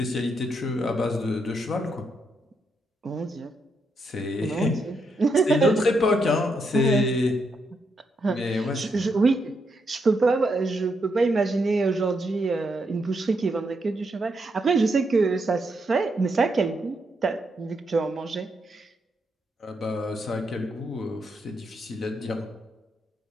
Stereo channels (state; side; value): normal; both; correlation 0.80